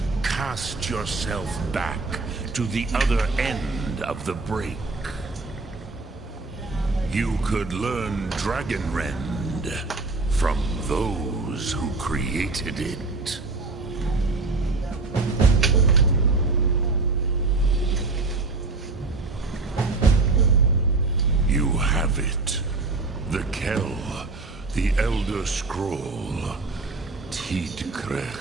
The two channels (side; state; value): left; quieter; 3.6 dB